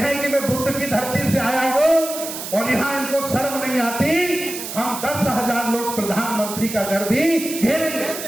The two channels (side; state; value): right; noise; hiss, 8 dB below the sound